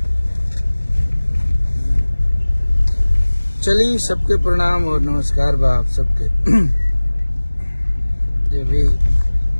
चलिए, सबके प्रणाम और नमस्कार बा आप सबके। जो भी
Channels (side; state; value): both; inverted; correlation -1.00